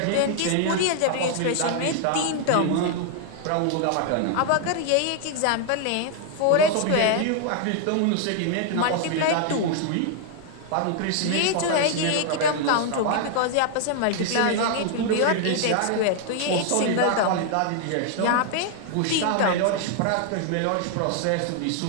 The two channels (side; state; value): both; different; correlation 0.00